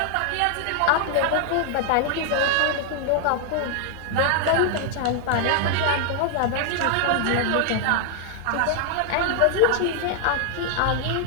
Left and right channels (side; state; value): both; different; correlation 0.00